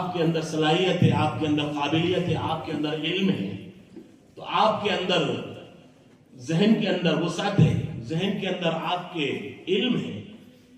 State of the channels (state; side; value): identical; both; correlation 1.00